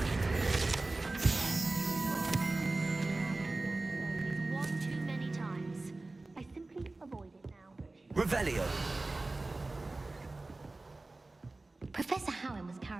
One too many times. I simply avoid it now. Revelio. Professor Howard was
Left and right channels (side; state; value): left; quieter; 3.1 dB